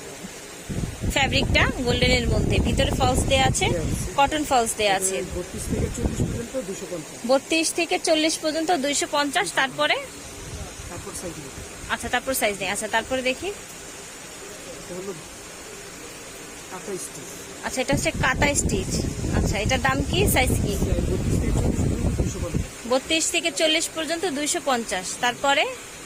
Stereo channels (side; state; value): both; identical; correlation 1.00